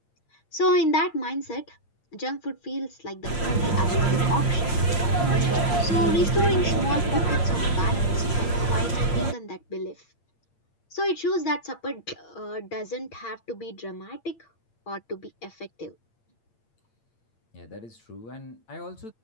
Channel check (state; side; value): late; right; 8.7 ms